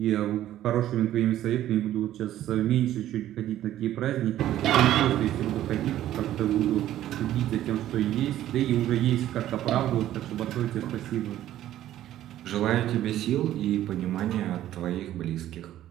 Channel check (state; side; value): quieter; left; 12.9 dB